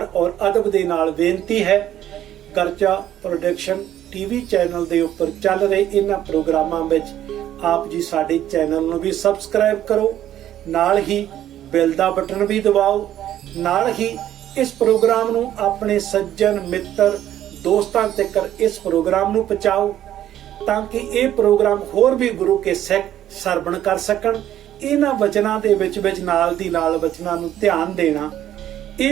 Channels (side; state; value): left; quieter; 11.8 dB